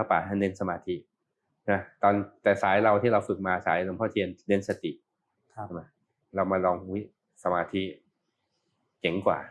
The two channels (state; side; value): identical; both; correlation 1.00